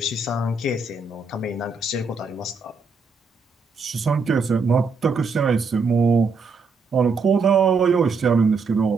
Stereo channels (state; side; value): quieter; left; 4.4 dB